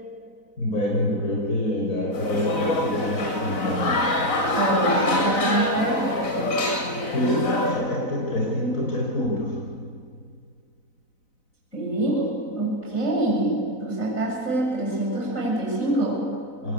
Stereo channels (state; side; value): late; right; 4.0 ms